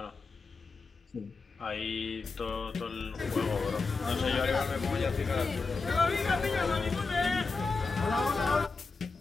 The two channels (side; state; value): right; quieter; 4.2 dB